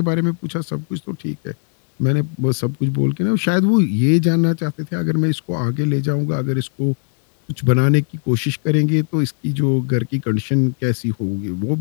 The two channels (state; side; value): silent; right; digital silence